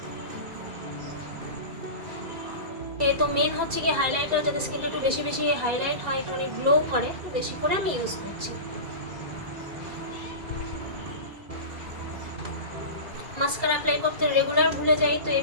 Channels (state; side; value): late; left; 2.3 ms